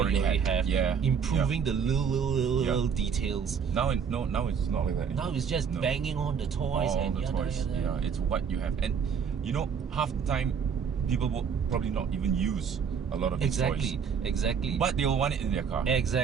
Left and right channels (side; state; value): left; quieter; 6.8 dB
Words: have. Yeah. Improving the little details. Now it's not like that. Now it's just banging on the toys Yeah, it's what you have. And half the time people will probably not even use a lot of these toys. Exactly. But they'll want it in their car.